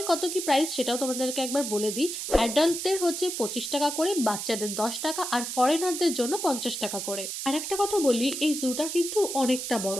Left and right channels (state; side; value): noise; right; hiss, 5 dB below the sound